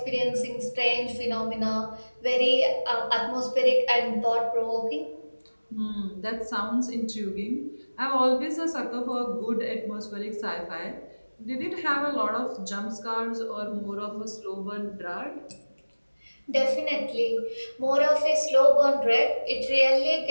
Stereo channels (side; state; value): both; inverted; correlation -1.00